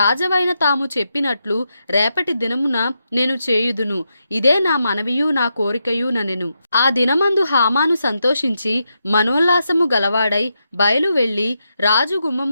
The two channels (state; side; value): inverted; both; correlation -0.84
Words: తాము చెప్పినట్లు రేపటి దినమున నేను చేయుదును. ఇదే నా మనవియు నా కోరికయు ననెను. ఆ దినమందు హామాను సంతోషించి మనోల్లాసము గలవాడై బయలు వెళ్ళి రాజు